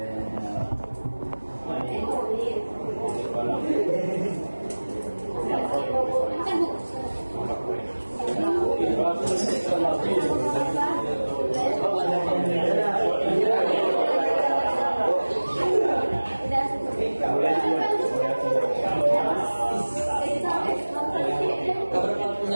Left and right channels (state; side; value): inverted; both; correlation -1.00